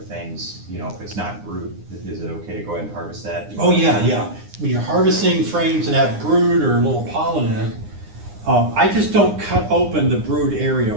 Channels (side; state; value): left; late; 9.8 ms